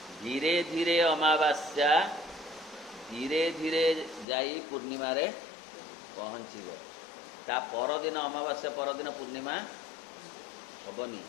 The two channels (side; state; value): right; drops out; at 4.2 s